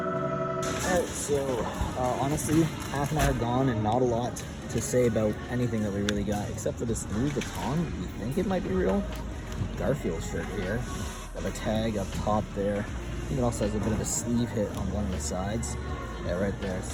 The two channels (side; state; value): both; identical; correlation 1.00